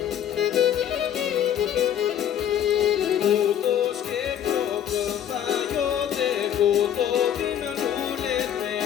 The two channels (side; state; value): right; quieter; 10.0 dB